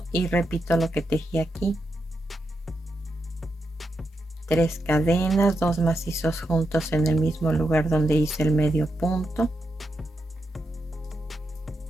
y repito lo que tejí aquí. 3 cadenas, 2 macizos juntos en el mismo lugar donde hice el medio punto.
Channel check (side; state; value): both; normal; correlation 0.85